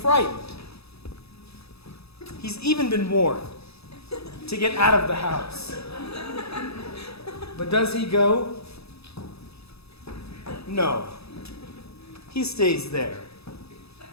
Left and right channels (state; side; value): late; right; 0.78 ms